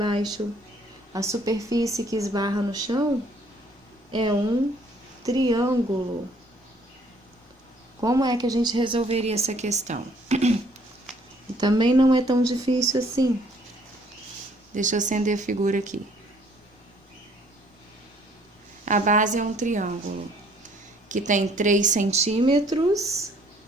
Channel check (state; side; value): normal; both; correlation 0.61